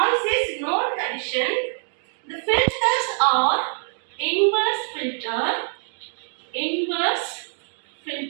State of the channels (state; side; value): silent; left; digital silence